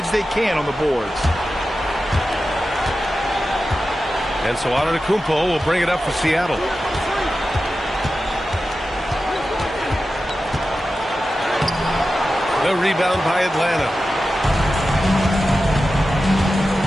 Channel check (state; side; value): normal; both; correlation 0.93